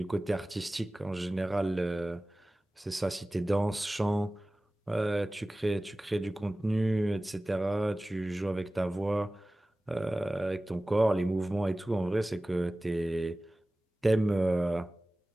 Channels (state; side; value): normal; both; correlation 0.97